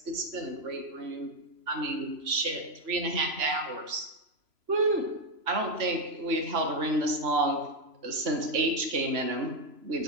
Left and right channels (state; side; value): late; left; 3.0 ms